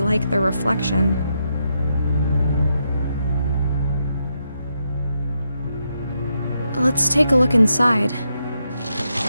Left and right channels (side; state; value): both; inverted; correlation -0.82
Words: their reflection. Let's take a look inside.